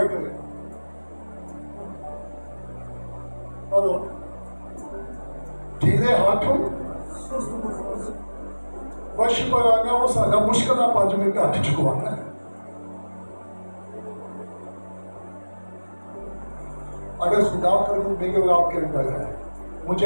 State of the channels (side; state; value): both; inverted; correlation -1.00